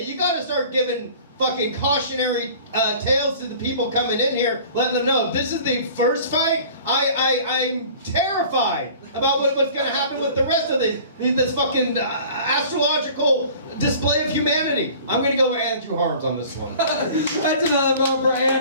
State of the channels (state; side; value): inverted; both; correlation -0.46